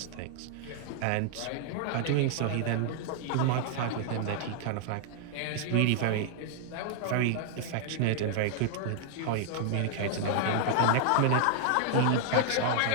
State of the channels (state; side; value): different; both; correlation 0.00